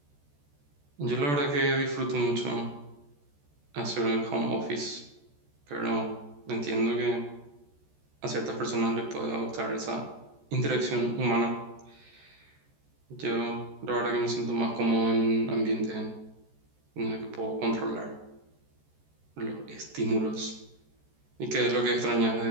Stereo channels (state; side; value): late; left; 14 ms